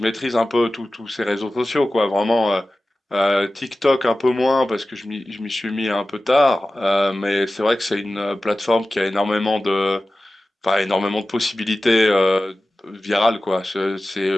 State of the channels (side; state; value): both; normal; correlation 0.95